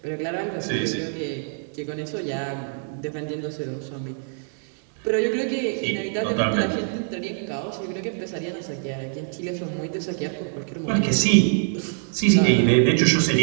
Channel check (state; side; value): silent; left; digital silence